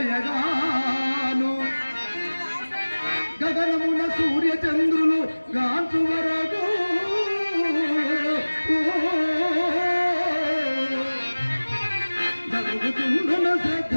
గగనమున సూర్య చంద్రులు గాంచు వరకు జరుగుతుండున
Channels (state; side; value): inverted; both; correlation -1.00